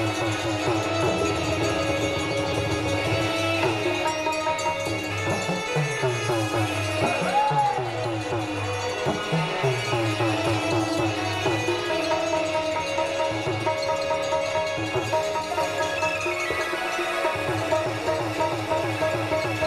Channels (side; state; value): right; noise; rumble, 21 dB below the sound